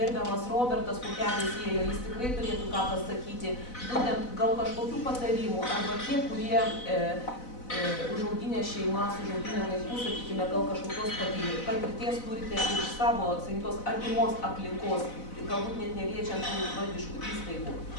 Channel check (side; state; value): right; late; 4.0 ms